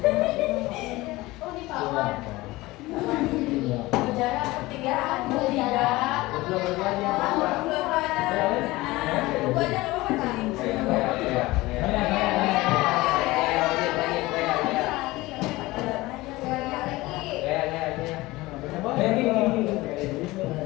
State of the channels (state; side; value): quieter; right; 19.9 dB